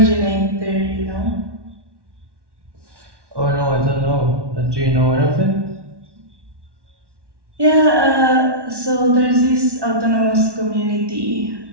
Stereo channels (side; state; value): left; late; 1.1 ms